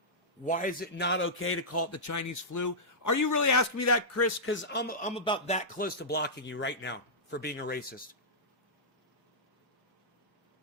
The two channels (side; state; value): both; normal; correlation -0.13